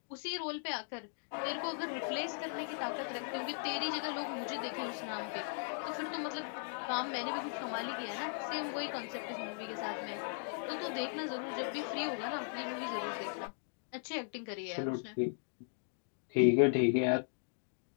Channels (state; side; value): silent; right; digital silence